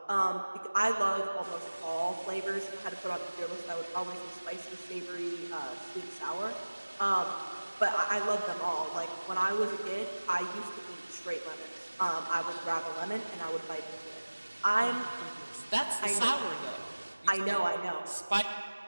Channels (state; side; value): inverted; both; correlation -1.00